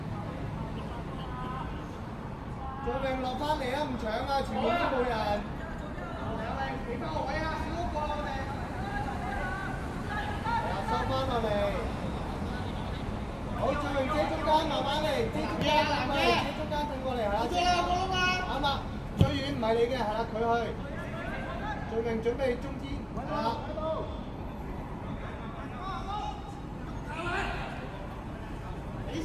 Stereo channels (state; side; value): identical; both; correlation 1.00